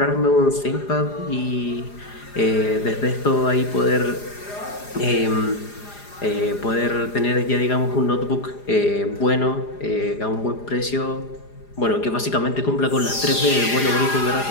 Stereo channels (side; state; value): right; late; 4.9 ms